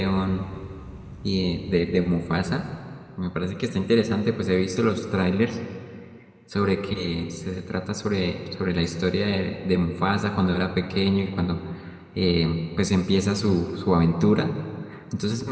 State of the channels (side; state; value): both; identical; correlation 1.00